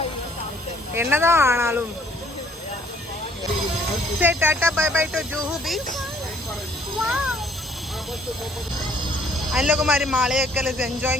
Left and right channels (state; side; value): normal; both; correlation 0.61